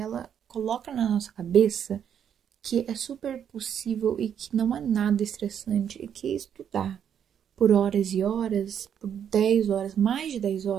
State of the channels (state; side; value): quieter; left; 8.7 dB